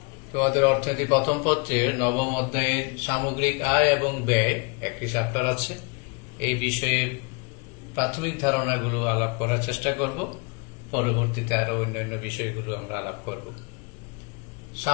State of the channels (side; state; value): right; quieter; 32.0 dB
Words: তোমাদের অর্থনীতি প্রথম পত্রের নবম অধ্যায়ের সামগ্রিক আয় এবং ব্যয় একটি চ্যাপ্টার আছে। এই বিষয়ে প্রাথমিক ধারণাগুলো আলাপ করার চেষ্টা করব, পরবর্তীতে আরো অন্যান্য বিষয়গুলো আমরা আলাপ করব।